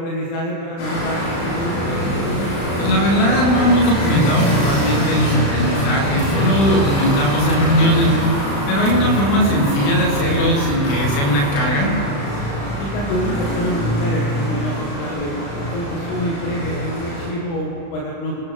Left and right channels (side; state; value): right; late; 36 ms